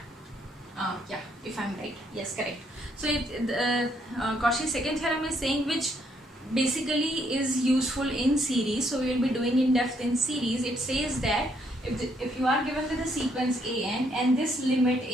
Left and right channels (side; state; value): both; normal; correlation 0.71